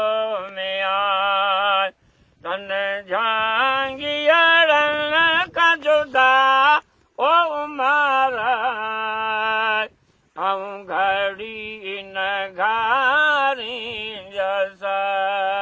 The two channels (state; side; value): identical; both; correlation 1.00